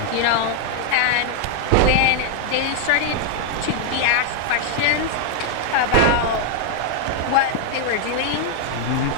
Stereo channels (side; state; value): both; different; correlation 0.00